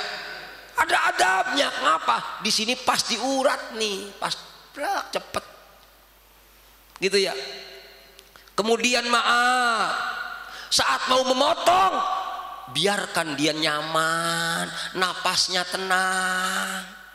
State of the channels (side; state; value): both; identical; correlation 1.00